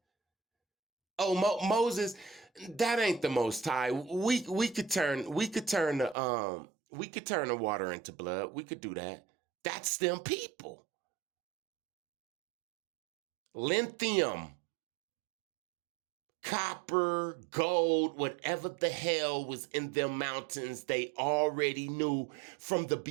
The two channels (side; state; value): left; drops out; at 6.2 s